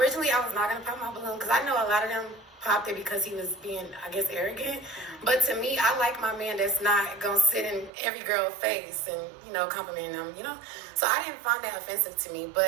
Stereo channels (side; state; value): left; drops out; at 7.9 s